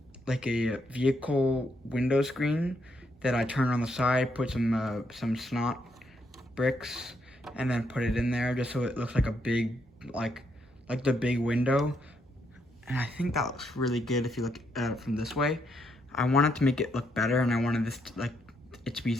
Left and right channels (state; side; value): normal; both; correlation 0.76